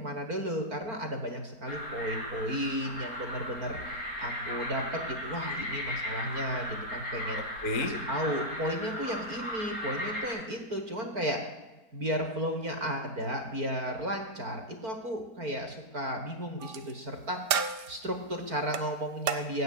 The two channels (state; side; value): late; left; 4.4 ms